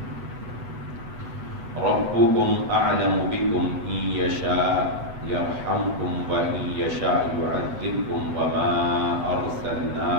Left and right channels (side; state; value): left; late; 8.1 ms